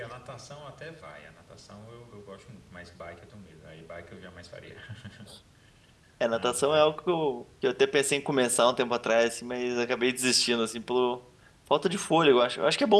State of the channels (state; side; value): identical; both; correlation 1.00